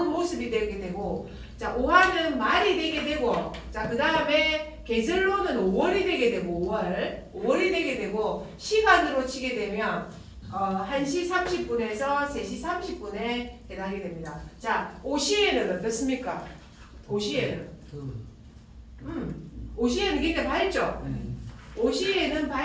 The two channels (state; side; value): identical; both; correlation 1.00